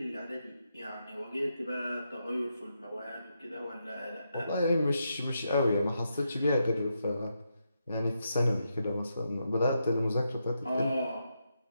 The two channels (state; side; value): inverted; both; correlation -0.83